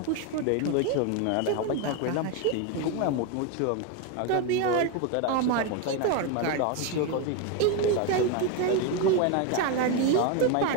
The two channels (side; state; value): both; different; correlation 0.02